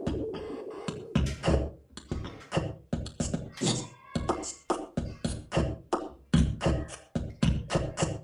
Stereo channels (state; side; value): identical; both; correlation 1.00